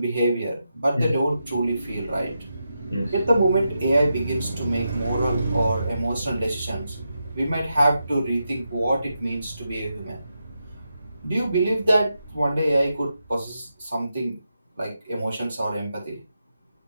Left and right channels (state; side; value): inverted; both; correlation -0.86